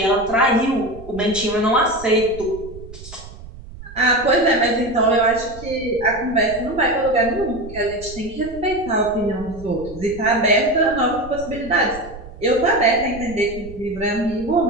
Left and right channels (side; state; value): right; noise; rumble, 16 dB below the sound